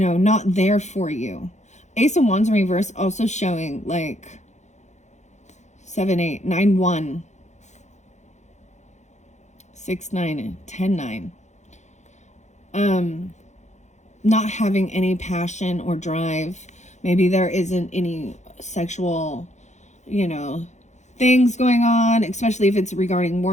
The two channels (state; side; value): late; right; 0.34 ms